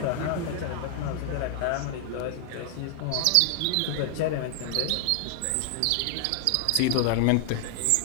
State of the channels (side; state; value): both; different; correlation 0.00